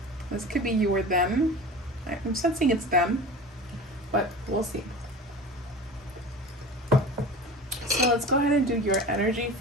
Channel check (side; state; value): both; normal; correlation 0.35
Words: This could be you or them. I'm sensing it's them, but we'll see. So let's go ahead and do your energy